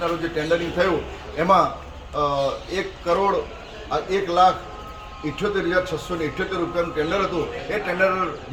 રોજ જે ટેન્ડરિંગ થયું એમાં 1,78,678 રૂપિયાનું ટેન્ડર હતું. એ ટેન્ડર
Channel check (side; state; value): both; identical; correlation 1.00